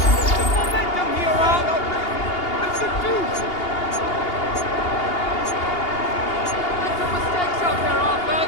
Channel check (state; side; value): late; right; 2.8 ms